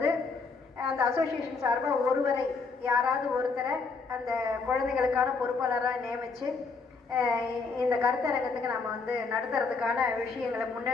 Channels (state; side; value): quieter; right; 4.5 dB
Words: அந்த அசோசியேஷன் சார்பாக ஒருவரை, யாராவது ஒருத்தரை அந்த குழந்தைகளுக்கான பொறுப்பாளராக நியமித்து இந்த கருத்தரங்கத்துக்கு நம்ம வந்து நடத்துறதுக்கான விஷயங்களை